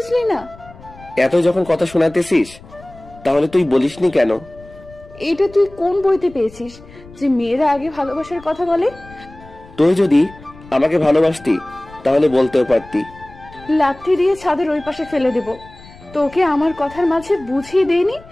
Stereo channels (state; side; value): noise; left; rumble, 21 dB below the sound